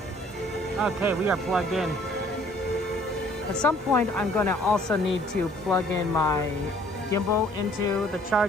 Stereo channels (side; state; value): both; normal; correlation 0.58